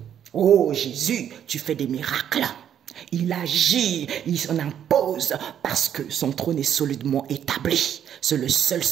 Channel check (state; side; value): quieter; left; 9.5 dB